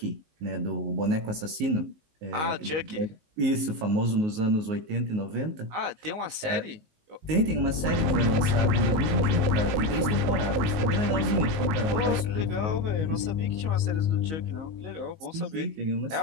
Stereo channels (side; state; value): left; late; 19 ms